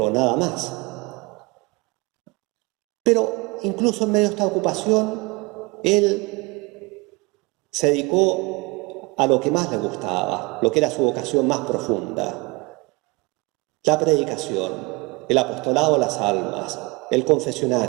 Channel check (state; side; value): quieter; left; 26.6 dB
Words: nada más. Pero incluso en medio de esta ocupación, él se dedicó a lo que más le gustaba, lo que era su vocación más profunda: la predicación, el apostolado a las almas, el